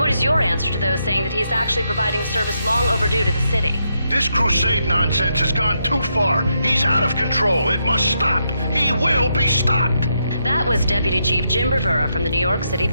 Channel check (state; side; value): inverted; both; correlation -0.80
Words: Your answer to those saying that he's actually providing a service long overdue to the city. This crusade nonsense has gone too far. He's out of control. It must stop. He will be stopped. That was Deputy Chief Jim Rivera from the New York City